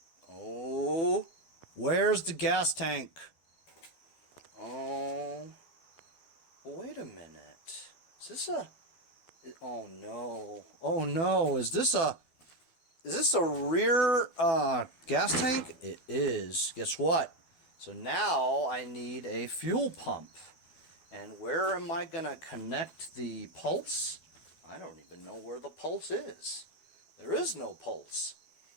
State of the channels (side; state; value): right; late; 12 ms